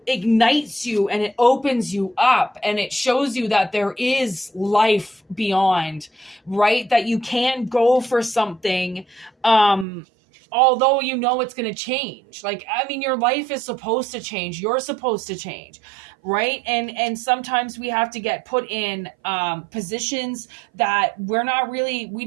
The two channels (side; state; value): left; drops out; at 9.9 s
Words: ignites you and it opens you up and it shows you that there is life beyond, right? That you can go for something, although it's going to change. Like, I mean, your life is supposed to change. You're supposed to change, right? And sometimes we have to get put in positions that we